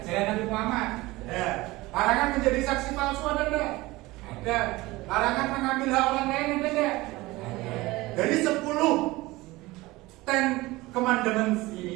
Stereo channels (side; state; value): left; quieter; 20.2 dB